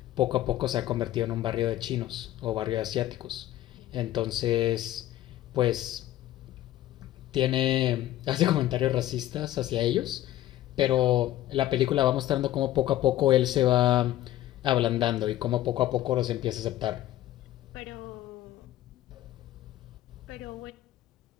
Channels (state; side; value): quieter; right; 13.9 dB